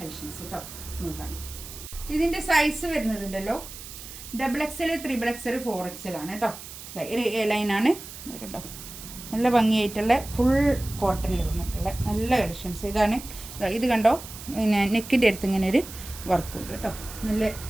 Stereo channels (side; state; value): right; noise; hiss, 13 dB below the sound